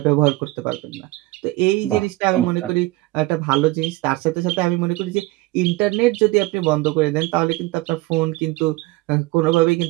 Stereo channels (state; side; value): quieter; left; 20.2 dB